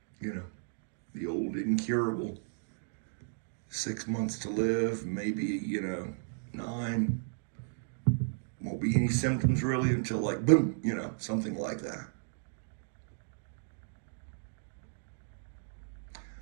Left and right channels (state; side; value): silent; left; digital silence